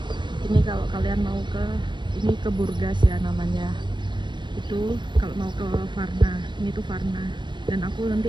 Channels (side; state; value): left; late; 0.22 ms